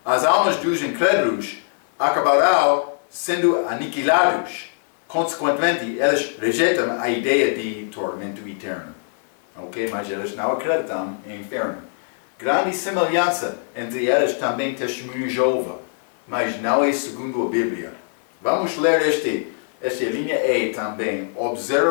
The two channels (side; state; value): right; silent; 64 dB below the other